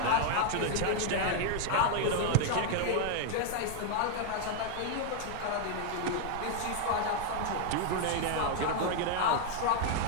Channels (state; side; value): different; both; correlation 0.00